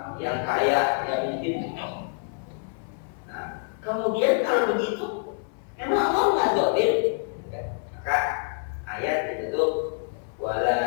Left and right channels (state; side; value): silent; right; 60 dB below the other